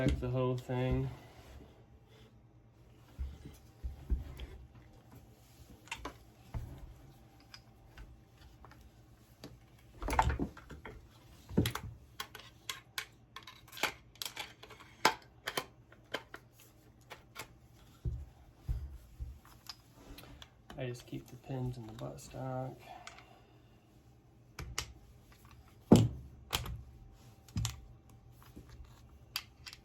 the whole thing. I just keep the pins in the buttstock.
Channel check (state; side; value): identical; both; correlation 1.00